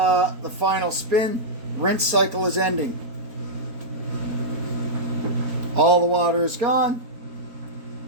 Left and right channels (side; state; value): left; late; 4.3 ms